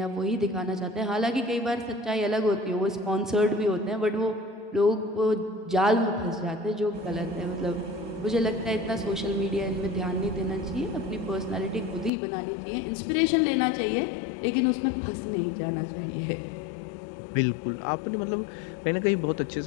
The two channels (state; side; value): drops out; right; at 12.1 s